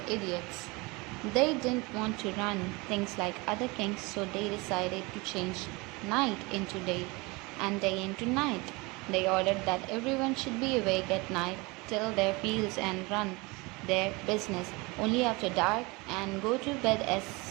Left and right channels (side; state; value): left; quieter; 25.4 dB